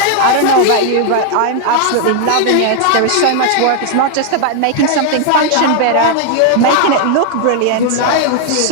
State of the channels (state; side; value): different; both; correlation 0.00